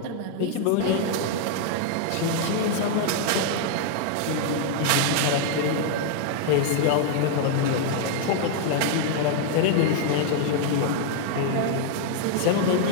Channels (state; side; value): different; both; correlation 0.00